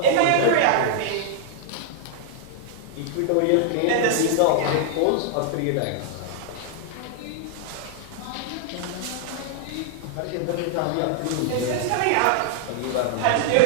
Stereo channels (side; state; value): both; different; correlation 0.00